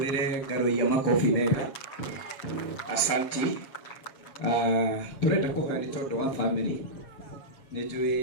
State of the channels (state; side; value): late; right; 6.9 ms